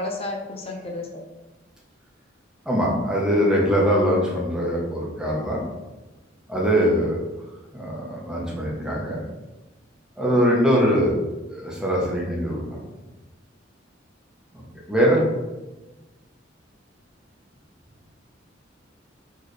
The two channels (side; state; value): both; normal; correlation 0.46